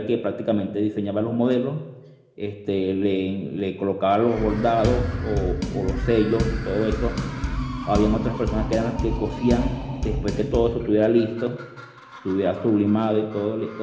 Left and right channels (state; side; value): identical; both; correlation 1.00